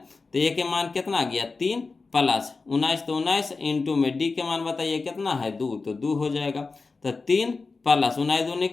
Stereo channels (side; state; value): right; quieter; 4.1 dB